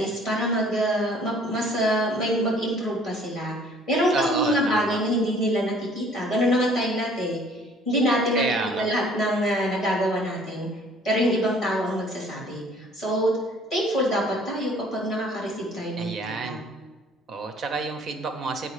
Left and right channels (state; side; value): normal; both; correlation 0.55